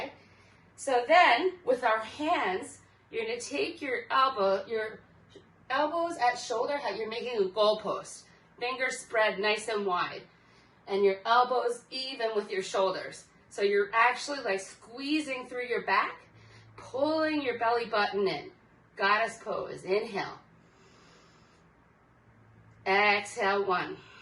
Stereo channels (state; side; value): identical; both; correlation 1.00